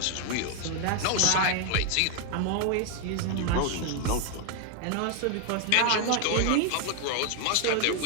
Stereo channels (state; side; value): different; both; correlation 0.00